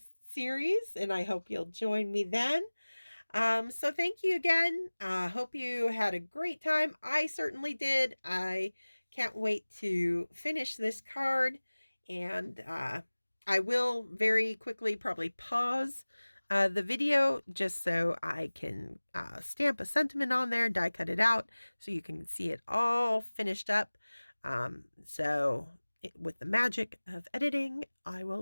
series. And I hope you'll join me then. So thank you again. Hope you had a great time. I certainly did. I can't wait to finish this card, and I will very quickly probably pause the video just so I can stamp a sentiment on there, die cut it out so you can see it all finished up. With the magic of editing, I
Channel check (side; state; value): both; inverted; correlation -1.00